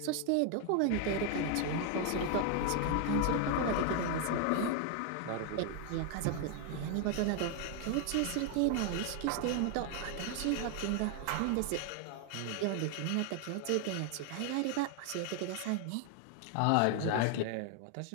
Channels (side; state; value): both; different; correlation 0.00